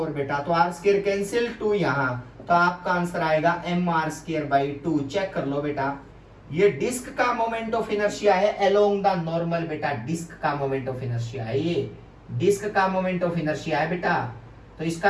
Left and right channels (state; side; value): identical; both; correlation 1.00